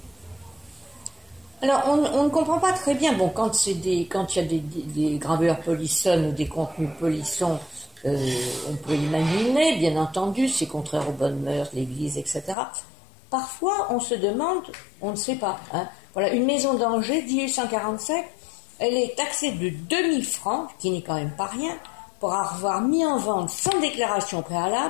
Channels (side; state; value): right; drops out; at 12.6 s